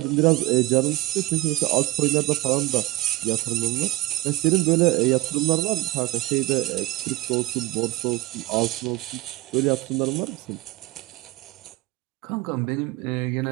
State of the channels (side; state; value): left; quieter; 18.7 dB